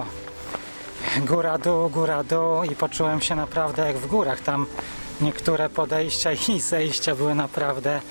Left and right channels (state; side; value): inverted; both; correlation -1.00